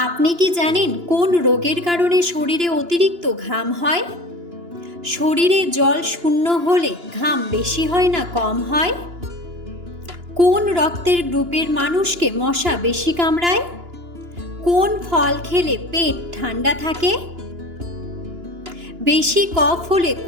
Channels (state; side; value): late; left; 2.9 ms